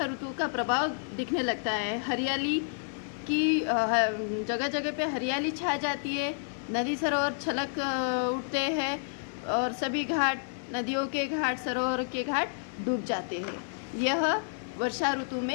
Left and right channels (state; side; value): silent; right; digital silence